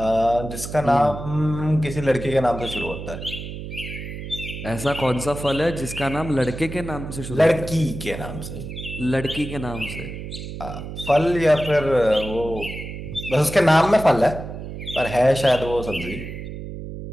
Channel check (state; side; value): noise; right; hum, 9 dB below the sound